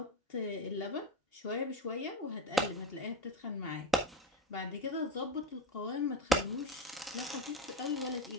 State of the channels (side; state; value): both; normal; correlation 0.20